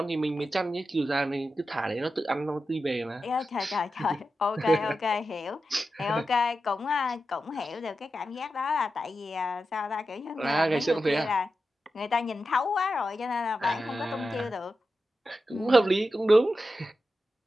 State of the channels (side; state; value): both; normal; correlation 0.91